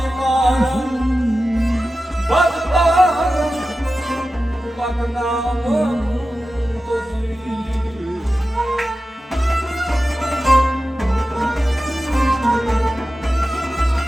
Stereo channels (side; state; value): both; normal; correlation 0.93